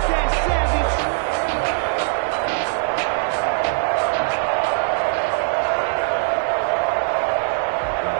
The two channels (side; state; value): left; silent; 65 dB below the other